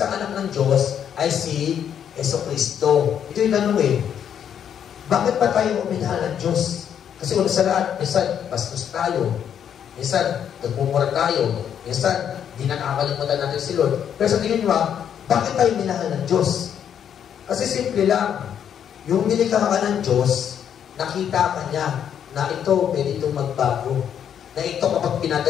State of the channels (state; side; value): quieter; right; 8.8 dB